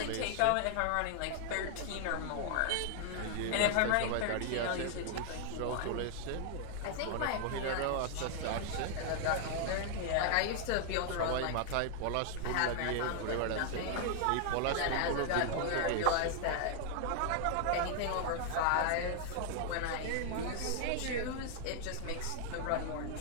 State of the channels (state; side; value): different; both; correlation 0.00